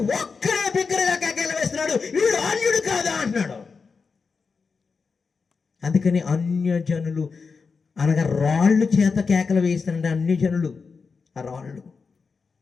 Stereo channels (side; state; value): right; quieter; 5.0 dB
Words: ఒక్కడే బిగ్గరగా కేకలు వేస్తున్నాడు, వీడు అన్యుడు కాదా అంటున్నాడు. అందుకని అన్యజనులు అనగా రాళ్ళు చేత కేకలు వేస్తారంటే అన్యజనులు ఆ రాళ్ళు.